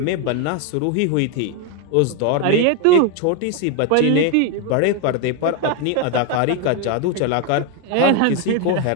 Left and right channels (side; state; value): both; different; correlation 0.01